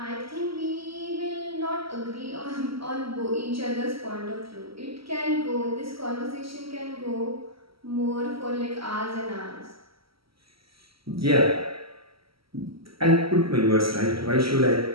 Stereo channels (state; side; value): late; left; 0.75 ms